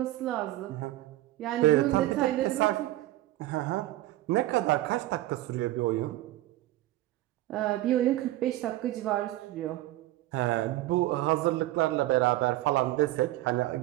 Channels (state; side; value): quieter; left; 16.3 dB